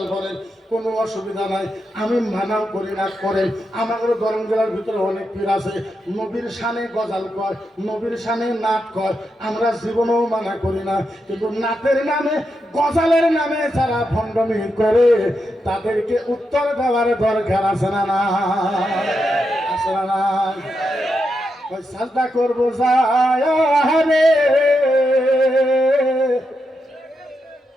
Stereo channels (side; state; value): both; normal; correlation 0.85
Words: করেন, কোনো অসুবিধা নাই, আমি মানাও করি না করেন। আমাদের গরম জেলার ভিতরে অনেক পীর আছে নবীর সামনে গজাল কয়, নবীর সামনে নাট কয়, আমরা জীবনেও মানা করি না। কিন্তু নাটের নামে গজালের নামে যারা ভণ্ডামি করে তাদেরকে উত্তর দেওয়ার দরকার আছে না না? আছে না না? ওই সাজদা করবো যায়